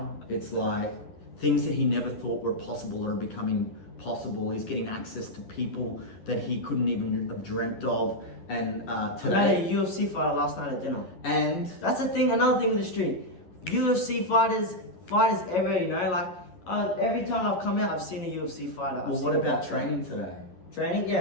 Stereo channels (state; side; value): late; right; 11 ms